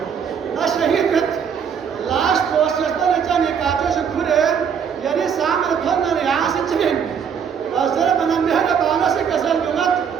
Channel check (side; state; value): left; quieter; 7.3 dB